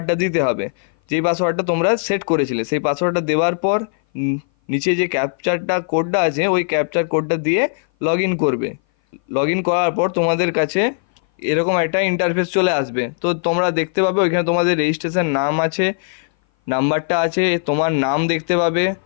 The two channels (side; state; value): right; silent; 58 dB below the other